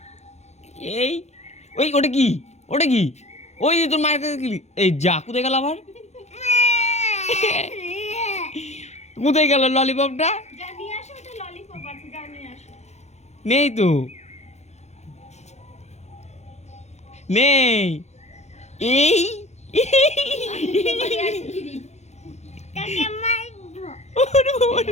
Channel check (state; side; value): late; right; 0.32 ms